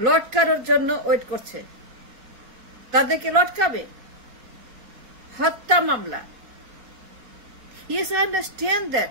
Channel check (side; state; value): left; late; 4.3 ms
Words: লটকানোর জন্য ওয়েট করছে, তাদেরকে লটকাবে। হত্যা মামলা, yes, I understand